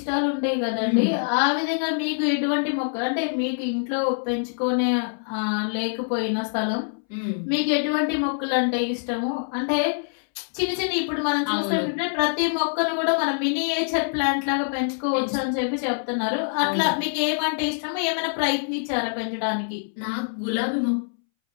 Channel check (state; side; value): silent; right; 62 dB below the other